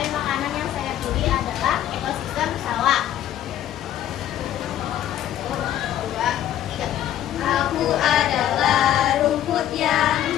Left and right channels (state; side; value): quieter; right; 11.8 dB